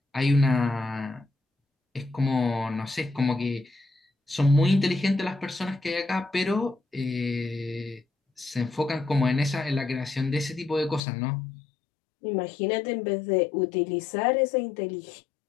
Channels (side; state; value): right; drops out; at 11.0 s